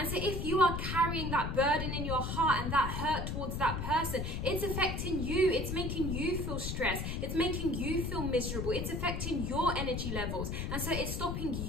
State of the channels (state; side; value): noise; left; rumble, 3 dB below the sound